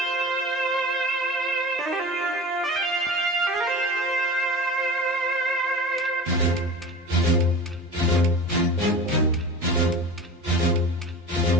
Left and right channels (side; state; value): both; normal; correlation 0.34